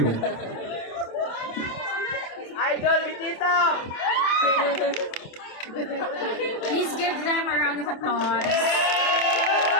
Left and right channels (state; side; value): late; right; 27 ms